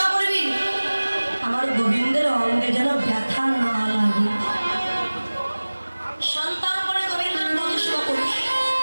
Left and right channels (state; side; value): inverted; both; correlation -1.00